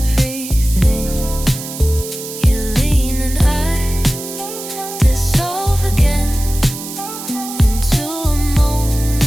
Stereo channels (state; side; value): noise; right; hiss, 10 dB below the sound